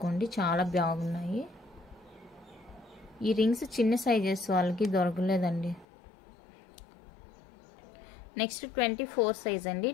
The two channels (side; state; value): right; drops out; at 5.9 s